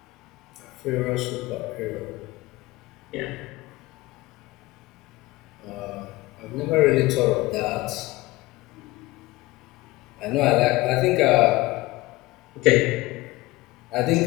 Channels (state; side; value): quieter; right; 20.0 dB